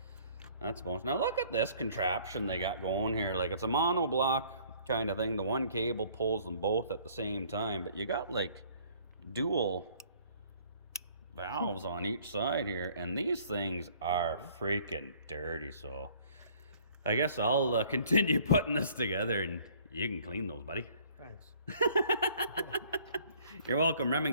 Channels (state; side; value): inverted; both; correlation -0.57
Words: that's bonus. Now look at this contraption they got going here. Like, it's a monoblock kind of thing. The one cable pulls them both at the same time, but you got like dual valves on each side here, and these things are freaking dirty, so I guess I'll continue putting this together and you can clean those, buddy. Thanks. You're welcome,